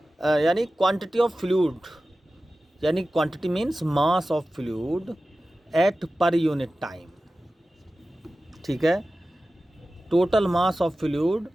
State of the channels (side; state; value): both; normal; correlation 0.95